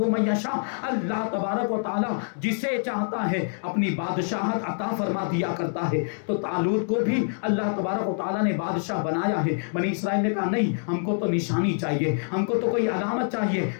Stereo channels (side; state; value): right; silent; 61 dB below the other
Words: من یشاء، اللہ تبارک و تعالی جسے چاہتا ہے اپنی بادشاہت عطا فرما دیا کرتا ہے۔ تو طالوت کو بھی اللہ تبارک و تعالی نے بادشاہ بنایا ہے۔ بنی اسرائیل نے کہا نہیں، ہم کو تو نشانی چاہیے، ہم کو تو کوئی علامت چاہیے،